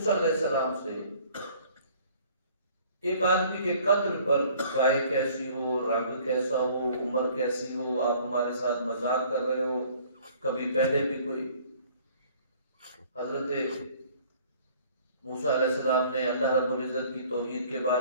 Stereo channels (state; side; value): inverted; both; correlation -0.55